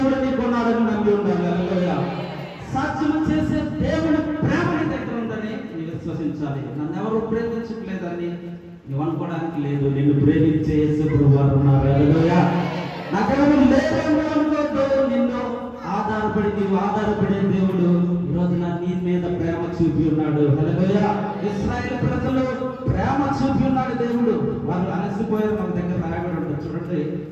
నీకున్నాడని నమ్మి ఉండాలి. హల్లెలూయా. సాధ్యం చేసే దేవుని ప్రేమ నీ దగ్గర ఉందని నీవు విశ్వసించాలి. నన్ను ఎవరు ప్రేమించట్లేదని నువ్వు అనుకోవడానికి లేదు. నిన్ను ప్రేమించే యేసు ప్రభువారు ఉన్నారు. హల్లెలూయా. నాకెవరు లేదని అనుకోవద్దు. నిన్ను ఆధారపడి నీవు ఆధారపడే దేవుడు ఈరోజు నీ మీద ప్రేమ చూపి ఉన్నాడు. హల్లెలూయా. ఇశ్రాయేలు ప్రజలు ప్రేమ చూపి ఉన్నాడు దేవుడు. వాళ్ళు అలసిపోయారు. మన దగ్గర రాయబడి ఉంటుంది చూడండి.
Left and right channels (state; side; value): identical; both; correlation 1.00